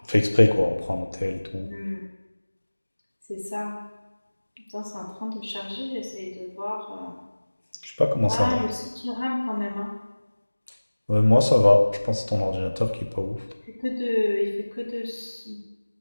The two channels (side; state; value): both; inverted; correlation -1.00